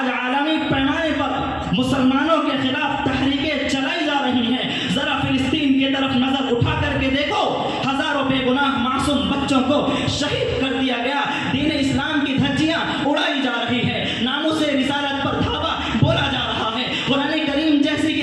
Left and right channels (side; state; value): both; identical; correlation 1.00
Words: आलमी पैमाने पर मुसलमानों के खिलाफ तहरीकें चलाई जा रही हैं। जरा फिलिस्तीन की तरफ नजर उठा करके देखो, हजारों बेगुनाह मासूम बच्चों को शहीद कर दिया गया। दीन इस्लाम की धज्जियां उड़ाई जा रही है, नामूसे रिसालत पर धावा बोला जा रहा है। कुरान करीम जैसी